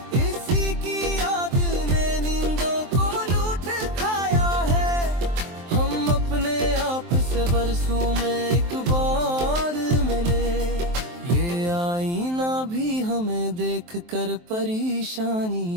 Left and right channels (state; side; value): late; left; 23 ms